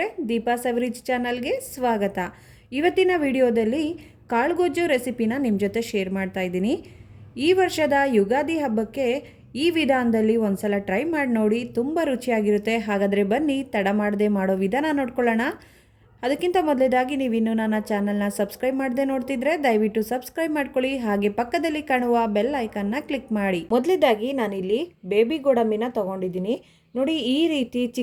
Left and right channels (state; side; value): identical; both; correlation 1.00